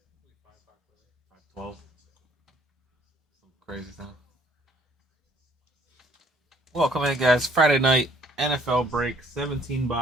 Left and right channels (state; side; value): normal; both; correlation 0.61